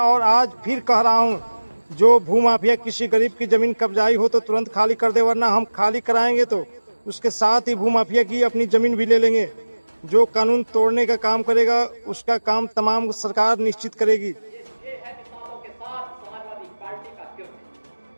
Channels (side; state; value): both; inverted; correlation -1.00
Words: और आज फिर कह रहा हूं, जो भूमाफिया किसी गरीब की जमीन कब्जाई हो तो तुरंत खाली कर दे, वरना हम खाली कराएंगे तो उसके साथ ही भूमाफिया की अपनी जमीन भी ले लेंगे। जो कानून तोड़ने का काम करेगा उसका काम तमाम सरकार निश्चित करेगी। ये है किसानों के साथ समाजवादी पार्टी का